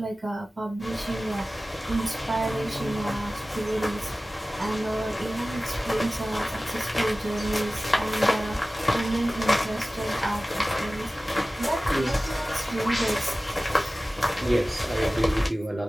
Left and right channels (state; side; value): normal; both; correlation 0.97